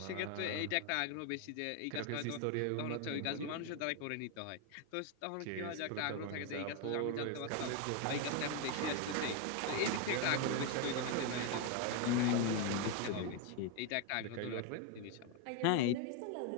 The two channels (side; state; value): both; different; correlation 0.01